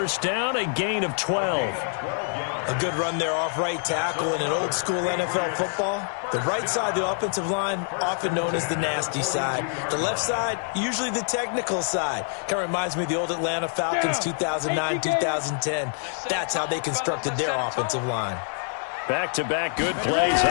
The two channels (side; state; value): right; silent; 61 dB below the other